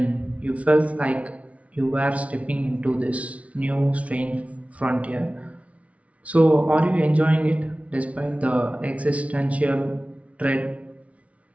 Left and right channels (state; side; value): late; left; 0.065 ms